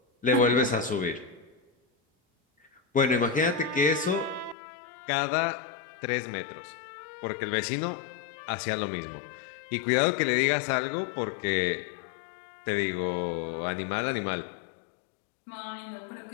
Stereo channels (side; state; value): right; drops out; at 4.5 s